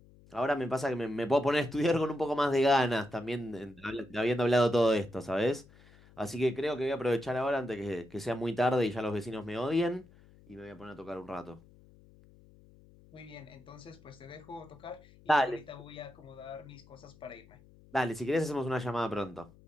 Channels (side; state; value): left; noise; hum, 25 dB below the sound